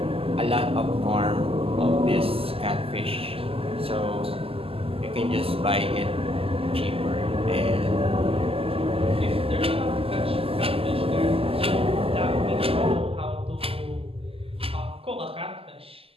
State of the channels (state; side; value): late; left; 0.28 ms